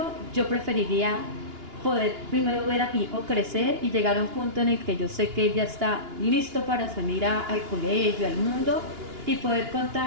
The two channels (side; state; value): left; late; 2.9 ms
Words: yo preferiría poder primero ver a mi hijo crecer y llegar a un punto en el que yo sé que él ya está listo para salir al colegio, al mundo, y poder